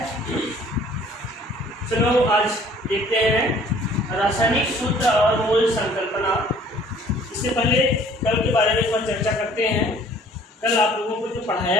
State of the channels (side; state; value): both; normal; correlation 0.55